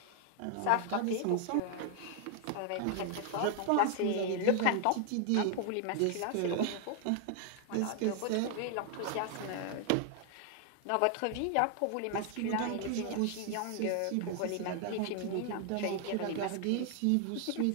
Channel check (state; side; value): different; both; correlation 0.00